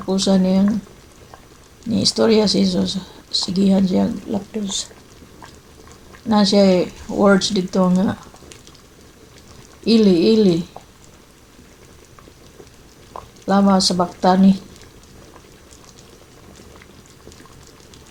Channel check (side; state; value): both; identical; correlation 1.00